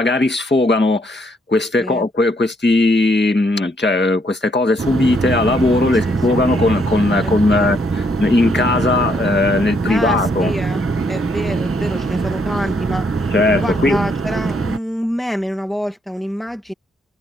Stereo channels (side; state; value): both; normal; correlation 0.71